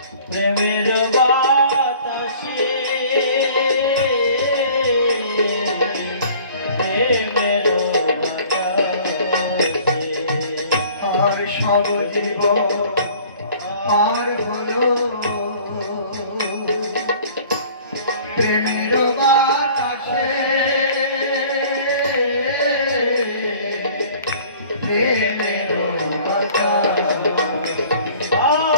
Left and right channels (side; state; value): both; inverted; correlation -0.50